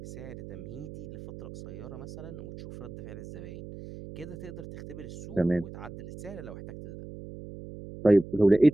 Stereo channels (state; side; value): noise; right; hum, 13 dB below the sound